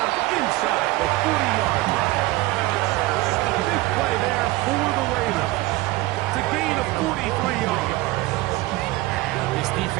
inside the 40-yard line. A big play there for the Ravens to gain a 43-yard. This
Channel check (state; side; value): quieter; left; 19.1 dB